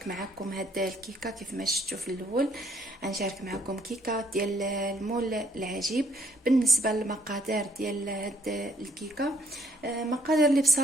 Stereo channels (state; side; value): normal; both; correlation 0.66